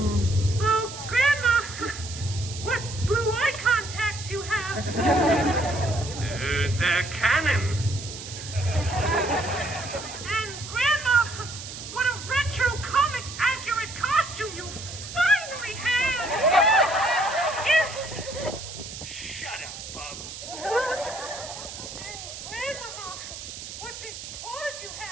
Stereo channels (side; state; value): right; noise; hiss, 10 dB below the sound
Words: Oh, Grandma! What blue eye contacts you have? They're canon. And Grandma, what a retro comic accurate costume you finally have! Yes! Shut up, Bub. And Grandmama, what big claws you